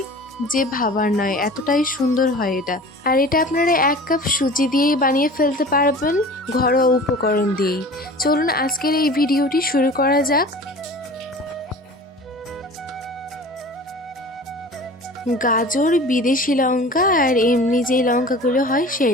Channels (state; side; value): normal; both; correlation 0.41